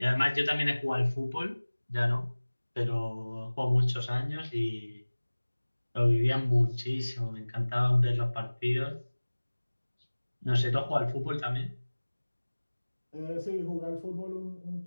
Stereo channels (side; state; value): both; inverted; correlation -1.00